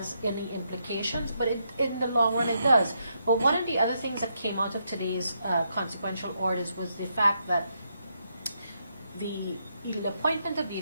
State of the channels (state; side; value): inverted; both; correlation -0.79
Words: any implications, but in the long run it does. But one of the other things that came out of today's consequential orders was the fact that the appointment of the